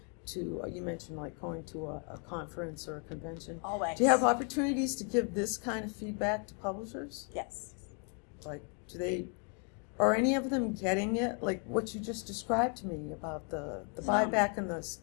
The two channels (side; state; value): right; quieter; 39.2 dB